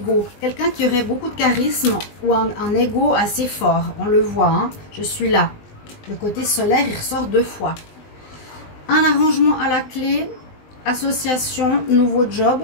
Quelqu'un qui aurait beaucoup de charisme ou un ego assez fort. On le voit, hein? Je suis là. Le côté solaire, il ressort 2 fois. Un arrangement à la clé, association, nouveau job,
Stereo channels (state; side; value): late; right; 20 ms